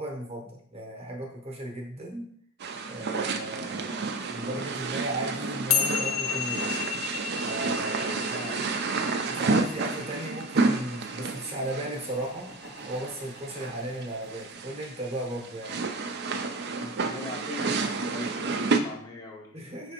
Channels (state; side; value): normal; both; correlation 0.27